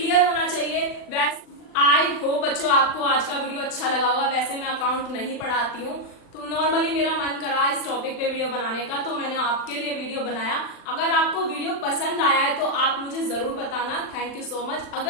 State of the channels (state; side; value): late; right; 39 ms